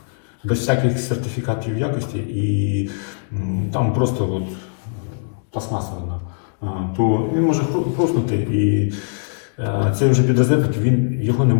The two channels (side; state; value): right; silent; digital silence